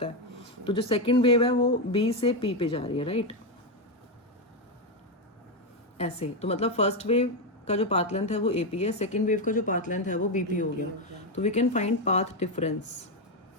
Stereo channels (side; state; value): both; normal; correlation 0.07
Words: है। तो जो सेकंड वेव है वो बी से पी पे जा रही है, राइट, ऐसे। तो मतलब फर्स्ट वेव का जो पाथ लेंथ है वो एपी है, सेकंड वेव का जो पाथ लेंथ है वो बीपी हो गया। तो we can find path difference.